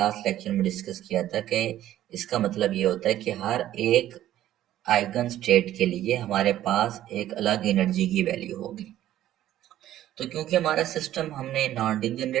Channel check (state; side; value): quieter; left; 13.0 dB